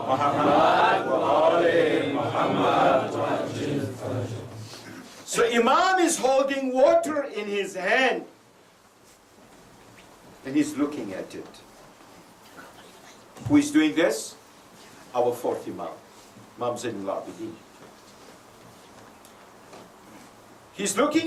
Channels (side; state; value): both; identical; correlation 1.00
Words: Muhammad wa ali Muhammad. So Imam is holding water in his hand and he's looking at it. Who is doing this? Our fourth Imam, Imam Zainul Abidin. He's